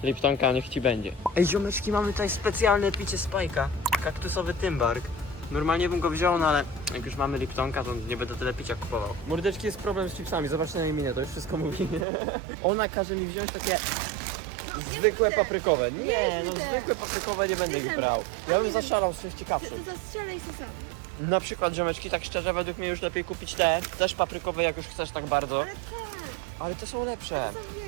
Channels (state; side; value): drops out; left; at 12.1 s